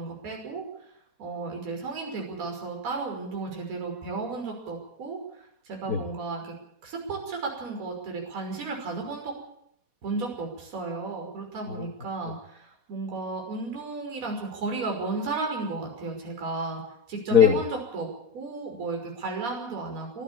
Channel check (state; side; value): late; left; 4.2 ms